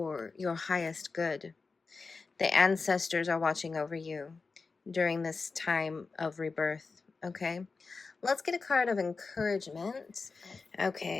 your highest good. The ancestors are watching over you during this time of rebirth, okay? Let's get a card of encouragement.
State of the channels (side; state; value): right; quieter; 4.4 dB